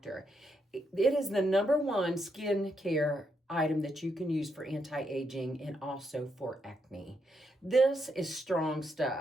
It is the #1 skincare item that you can use for anti-aging and also for acne. This is strong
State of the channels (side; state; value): both; normal; correlation 0.80